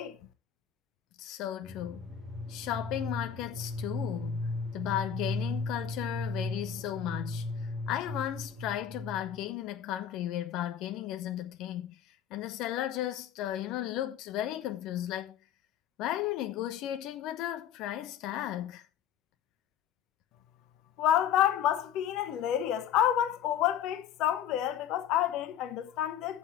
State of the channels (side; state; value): right; quieter; 9.2 dB